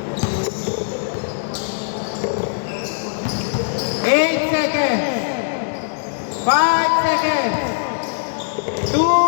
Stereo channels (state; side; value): silent; right; digital silence